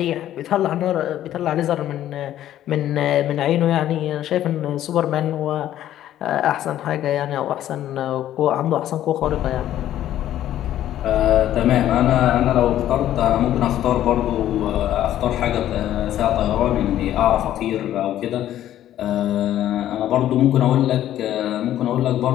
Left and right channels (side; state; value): right; quieter; 12.3 dB